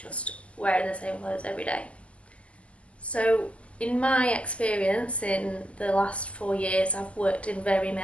wearing the same clothes every day. So in my experience in the last 4 years, I've worked in very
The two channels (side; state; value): right; late; 0.062 ms